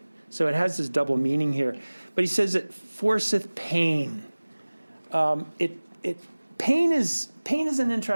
So it has this double meaning here. But he says it forceth pain. Pain is an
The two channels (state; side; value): inverted; both; correlation -1.00